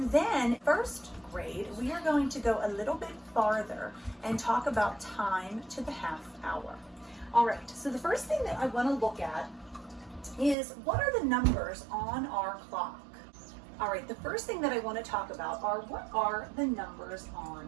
then first grade, we are going to go a little bit farther and talk about time to the half hour. All right, so the first thing that I want to look at is what are the numbers on our clock? All right, the first thing that I want to talk about are what are the numbers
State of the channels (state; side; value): drops out; left; at 10.6 s